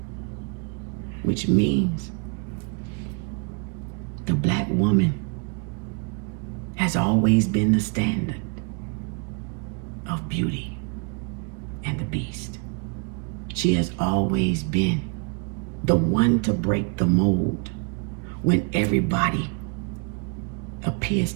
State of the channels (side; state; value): left; quieter; 36.8 dB